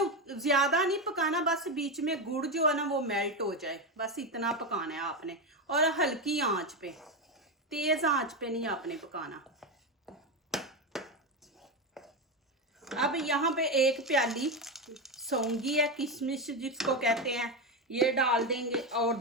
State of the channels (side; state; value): both; normal; correlation 0.13